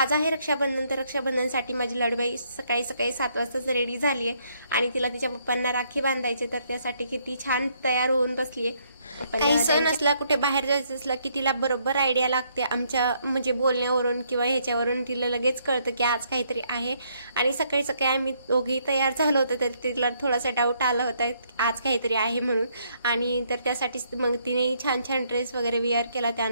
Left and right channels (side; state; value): both; inverted; correlation -0.71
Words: आहे रक्षाबंधन, तर रक्षाबंधनसाठी माझी लाडूबाई सकाळी 7 वाजताच रेडी झाली आहे आणि तिला तिच्या पप्पांना राखी बांधायचे, तर त्यासाठी किती छान तयार होऊन बसली आहे। काही सण असला, कुठे बाहेर जायचं असलं की तिला बरोबर आयडिया लागते, आमच्या म्हणजे बोलण्यावरून किंवा ह्याच्यावरून तिला लगेच कळतं की आज काहीतरी आहे। आणि सकाळी सकाळी आम्ही दोघेही तयार झालो होतो, तर तिला थोडासा डाऊट आला होता आज काहीतरी आहे म्हणून, आणि तर त्यासाठी मग तिने छान छान ड्रेस वगैरे वेअर केला।